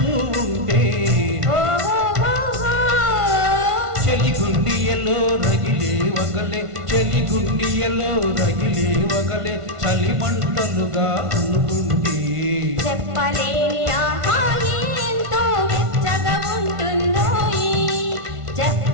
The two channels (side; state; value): left; late; 1.5 ms